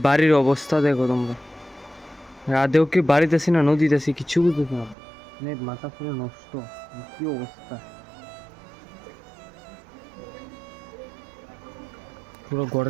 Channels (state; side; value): drops out; left; at 5.0 s